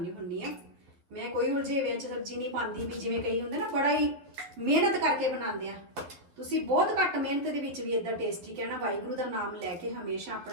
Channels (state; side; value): late; left; 11 ms